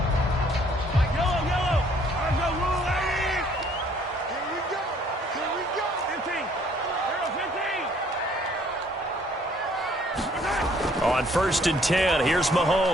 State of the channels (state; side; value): normal; both; correlation 0.61